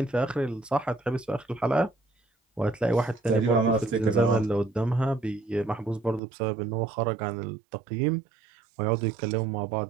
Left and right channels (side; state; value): left; drops out; at 6.2 s